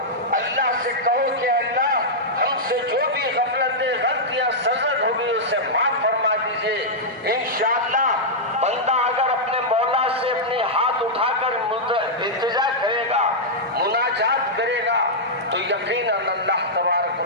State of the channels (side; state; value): both; normal; correlation -0.08